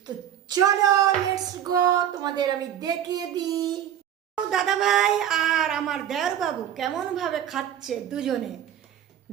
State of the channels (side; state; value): left; quieter; 10.4 dB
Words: তো চলো লেটস গো, তোমাদের আমি দেখিয়ে দিই দাদা ভাই আর আমার দেওর বাবু কেমন ভাবে খাচ্ছে দুজনে।